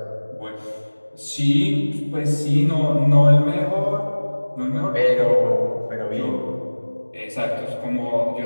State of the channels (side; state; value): both; inverted; correlation -1.00